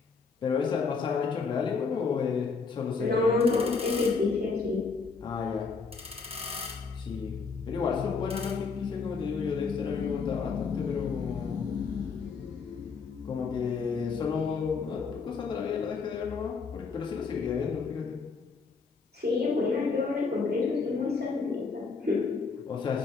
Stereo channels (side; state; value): right; quieter; 4.9 dB